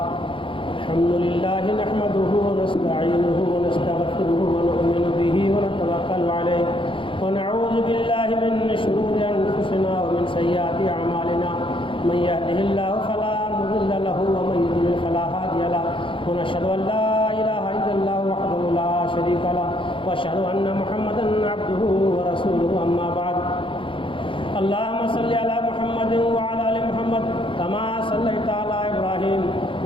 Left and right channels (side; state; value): right; late; 0.25 ms